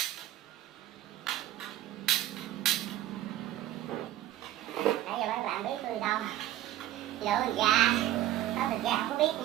Nãy giờ mấy bạn biết tôi đâu lựa thịt gà, có thịt gà không có biết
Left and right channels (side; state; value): left; quieter; 13.4 dB